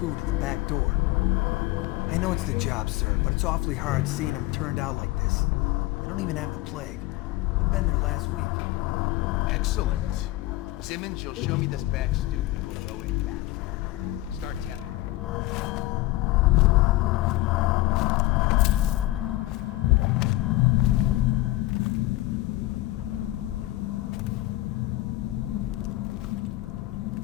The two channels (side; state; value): right; quieter; 18.1 dB